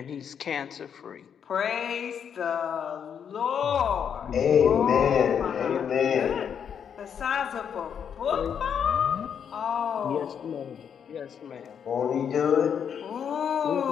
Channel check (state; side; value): quieter; right; 7.8 dB